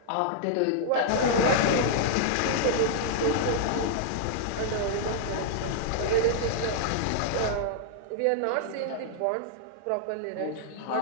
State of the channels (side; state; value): both; different; correlation -0.01